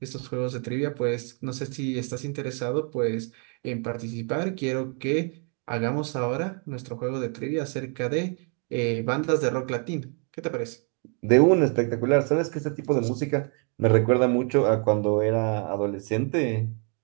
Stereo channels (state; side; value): quieter; left; 39.4 dB